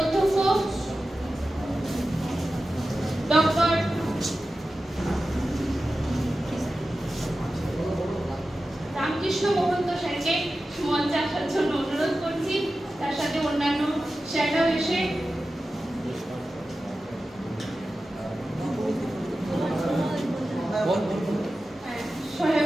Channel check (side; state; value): both; normal; correlation 0.94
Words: ডক্টর রামকৃষ্ণ মহন্ত স্যারকে মঞ্চে আসার জন্য অনুরোধ করছি। তার সাথে অন্যান্য স্যাররাও এসে